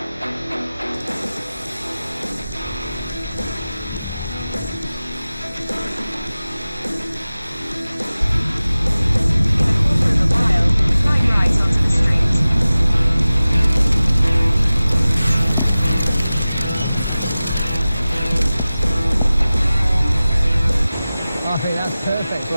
I think that's perfect for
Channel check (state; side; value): inverted; both; correlation -0.97